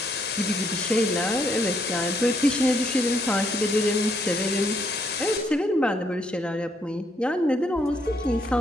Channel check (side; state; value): both; normal; correlation 0.72